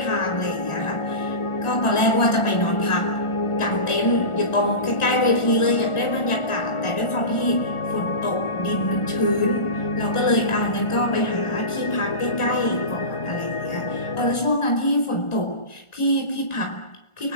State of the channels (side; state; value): right; late; 1.4 ms